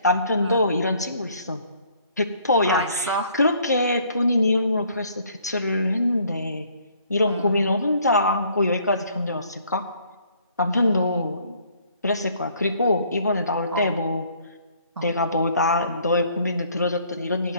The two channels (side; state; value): both; inverted; correlation -0.62